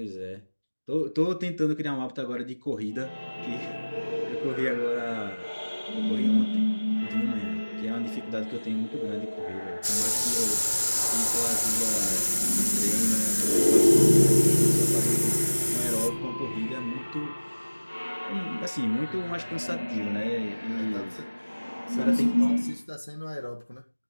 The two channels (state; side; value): inverted; both; correlation -1.00